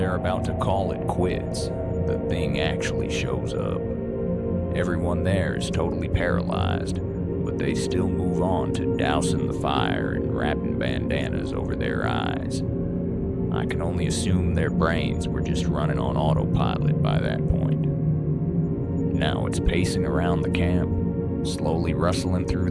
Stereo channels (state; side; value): identical; both; correlation 1.00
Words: about to call it quits, the thing actually shows up. Everyone there is totally paralyzed, but they still move on to dousing the fire and wrapping bandanas over their eyes. I can only assume their brains were just running on autopilot by that point. Now it's pacing around the camp, slowly rustling through